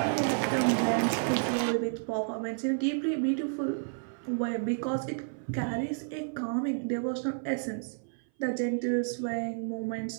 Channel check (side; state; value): left; silent; 57 dB below the other